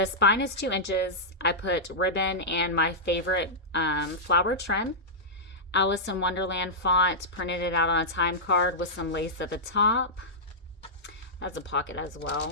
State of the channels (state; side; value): normal; both; correlation -0.11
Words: spine is 2 inches. I put ribbon and my favorite flower trim. Alice in Wonderland font, printed it out on a time card with some lace at the top. That's a pocket as